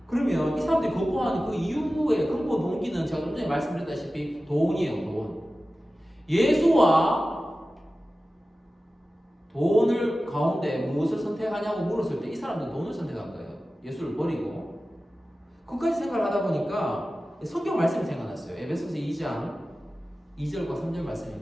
그러면 이 사람들이 거부하는 그 이유의 근본 동기는 제가 좀 전에 말씀드렸다시피 돈이에요. 돈. 예수와 돈을 가운데 무엇을 선택하냐고 물었을 때 이 사람들은 돈을 선택한 거예요. 예수를 버리고. 그까지 생각을 하다 보니까 성경 말씀이 생각났어요. 에베소서 2장 2절과 3절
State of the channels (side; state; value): both; normal; correlation 0.95